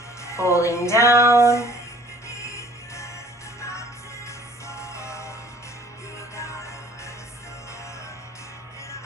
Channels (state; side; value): normal; both; correlation 0.52